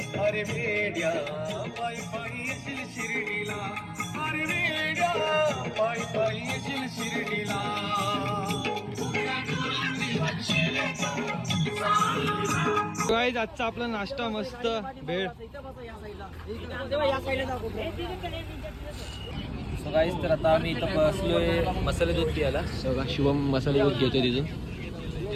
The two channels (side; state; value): both; identical; correlation 1.00